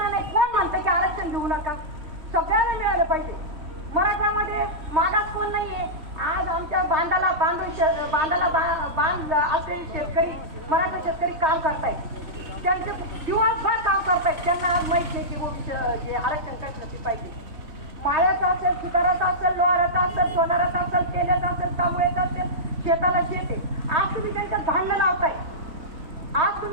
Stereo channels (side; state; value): left; late; 3.6 ms